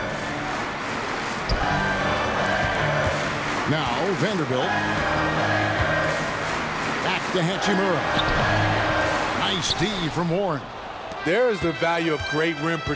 Now Vanderbilt. Back to Hachimura. Nice D from Warren. There is the value of great rim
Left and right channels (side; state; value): both; identical; correlation 1.00